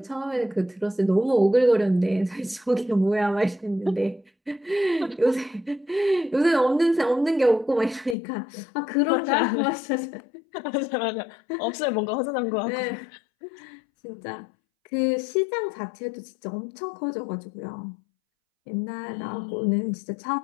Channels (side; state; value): right; drops out; at 8.2 s